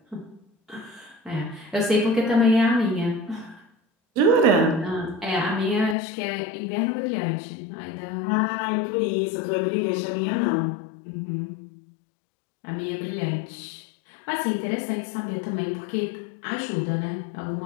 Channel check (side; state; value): right; drops out; at 6.0 s